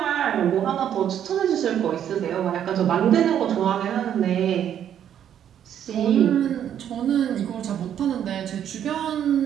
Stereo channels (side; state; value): left; quieter; 9.8 dB